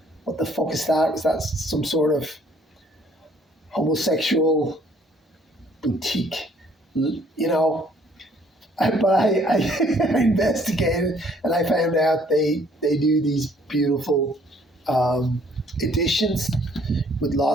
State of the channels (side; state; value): both; normal; correlation 0.61